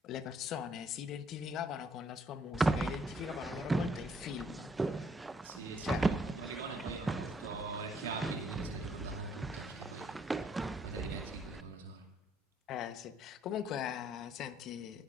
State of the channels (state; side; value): normal; both; correlation 0.67